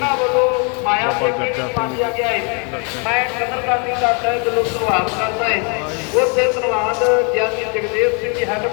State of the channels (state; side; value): quieter; right; 35.5 dB